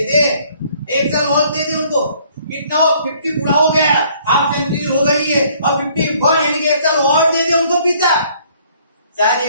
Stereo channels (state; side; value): inverted; both; correlation -0.61